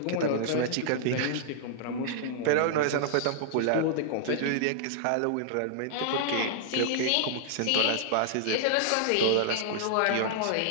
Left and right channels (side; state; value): both; different; correlation -0.01